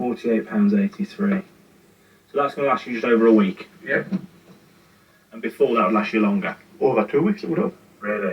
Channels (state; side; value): identical; both; correlation 1.00